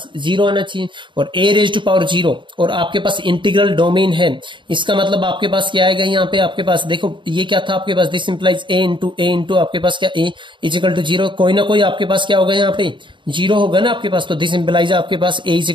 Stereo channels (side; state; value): left; late; 0.23 ms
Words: 0 आना चाहिए, और a रेज टू पावर 0 और आपके पास इंटीग्रल डोमेन है, इसका मतलब आपके पास क्या आएगा, यहाँ पे आपके पास देखो ये क्या था आपके पास, दिस इंप्लाइज a इंटू आपके पास क्या a इज इक्वल टू 0, कोई ना कोई आपके पास क्या होगा, यहाँ पे 0 होगा ना आपके पास। तो दिस इंप्लाइज आपके पास a इज